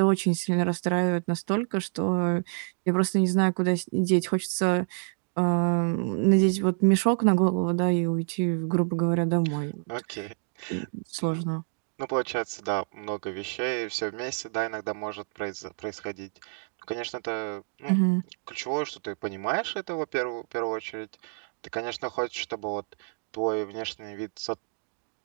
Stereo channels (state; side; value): silent; left; 59 dB below the other